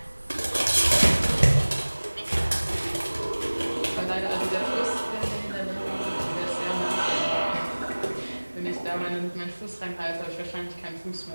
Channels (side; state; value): both; inverted; correlation -1.00